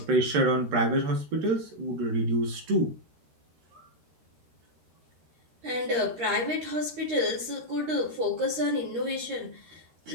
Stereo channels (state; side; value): late; left; 13 ms